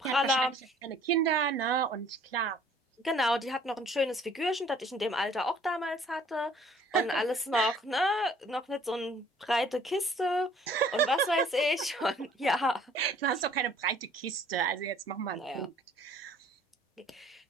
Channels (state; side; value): normal; both; correlation 0.56